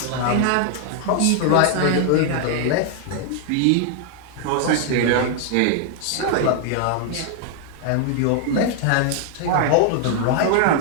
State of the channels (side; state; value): both; different; correlation 0.00